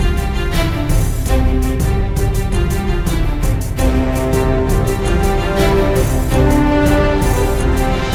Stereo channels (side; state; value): both; identical; correlation 1.00